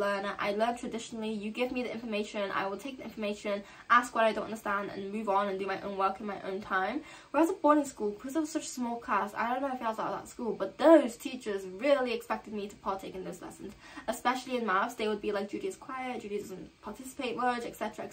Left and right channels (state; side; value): identical; both; correlation 1.00